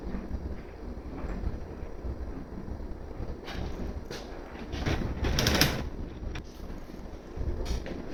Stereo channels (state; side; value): identical; both; correlation 1.00